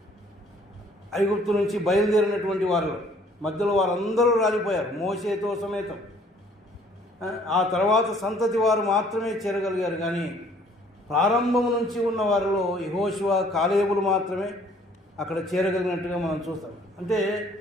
ఐగుప్తు నుంచి బయలుదేరినటువంటి వారిలో మధ్యలో వారందరూ రాలిపోయారు మోషేతో సమేతం. ఆ తర్వాత సంతతి వారు మాత్రమే చేరగలిగారు. కానీ ప్రారంభం నుంచి ఉన్న వారిలో యెహోషువ కాలేబులు మాత్రమే అక్కడ చేరగలిగినట్టుగా మనం చూస్తాం. అంటే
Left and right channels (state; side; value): normal; both; correlation 0.59